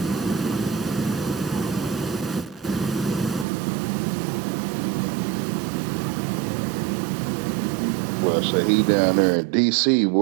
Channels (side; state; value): left; drops out; at 3.5 s